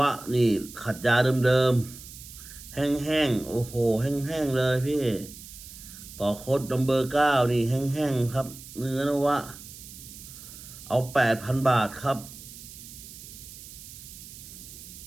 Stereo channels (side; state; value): right; noise; hiss, 15 dB below the sound